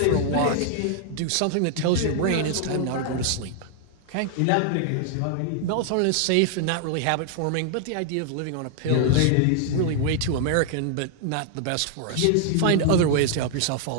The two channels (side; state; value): both; different; correlation 0.00